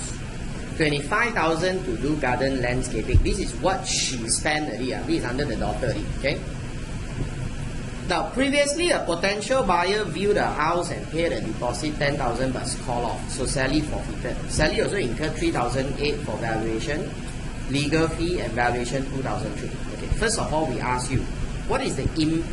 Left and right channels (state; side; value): identical; both; correlation 1.00